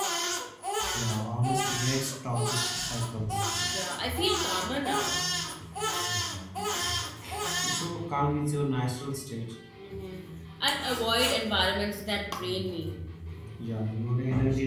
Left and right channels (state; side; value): identical; both; correlation 1.00